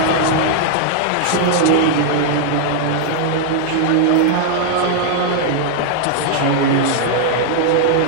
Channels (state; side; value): different; both; correlation -0.01